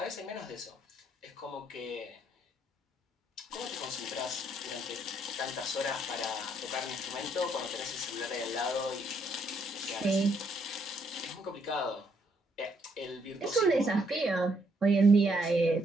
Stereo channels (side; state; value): both; normal; correlation 0.72